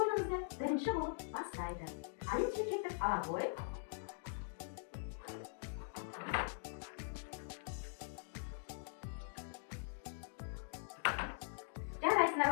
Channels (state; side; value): silent; right; digital silence